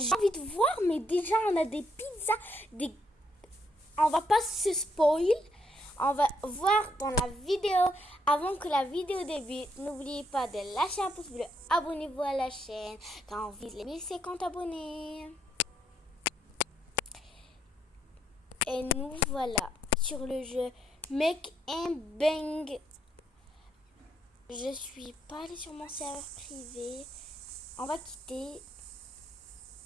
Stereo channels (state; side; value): normal; both; correlation 0.75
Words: envie de voir, mais déjà, on a des pizzas, on va pas se spoil. On va voir dans la vidéo. Avant que la vidéo débute, n'oubliez pas de lâcher un pouce bleu. Abonnez-vous à la chaîne car on vise les 1050 abonnés. Et nous voilà sur le jeu Make and Bang. Je suis pas allée sur mon serveur privé. On va quitter